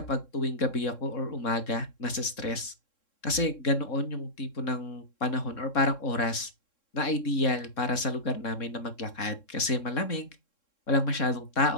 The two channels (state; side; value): late; right; 3.7 ms